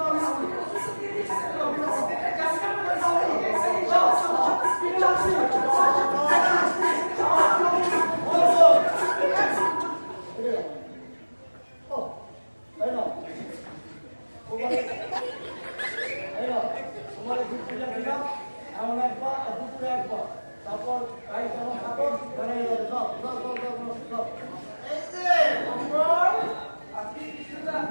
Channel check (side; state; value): both; inverted; correlation -1.00